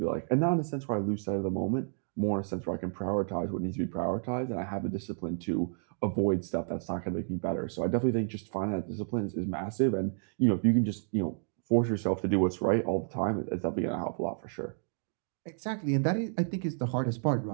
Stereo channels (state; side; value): silent; left; digital silence